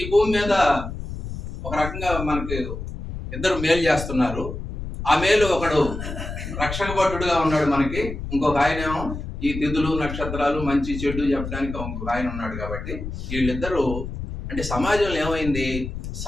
భూమి మీద ఒక రకంగా మనకి ఇద్దరు మేలు చేస్తున్నారు. ఆ మేలు ఒకడు రక్షక భటుడుగా ఉన్నాడు మనకి, ఇంకొక ఆయనేమో ఈ తిథులు నక్షత్రాలు మంచి చెడు చెప్పడానికి ఇంకొక ఆయన ఉన్నాడు. కాబట్టి వీళ్ళిద్దరూ అంటే సమాజంలో ఏమైంది,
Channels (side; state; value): left; noise; rumble, 7 dB below the sound